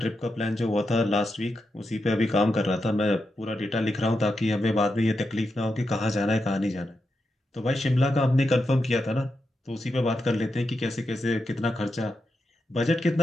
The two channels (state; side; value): normal; both; correlation 0.86